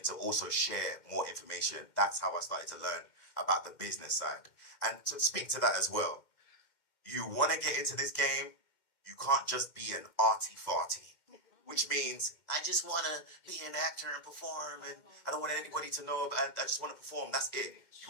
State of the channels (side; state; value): right; late; 2.1 ms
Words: to also share more information. That's how I started to learn about the business side. And to speak to that as well, you want to get into this game, you can't just be an arty-farty. which means I just want to be an actor and perform, and I don't want anybody to know, I just want to perform. That's it.